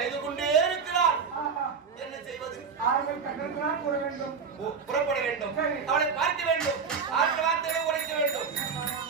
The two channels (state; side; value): quieter; left; 5.9 dB